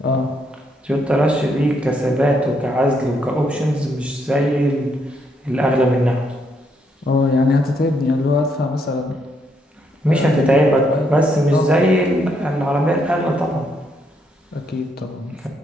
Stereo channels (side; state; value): both; normal; correlation 0.75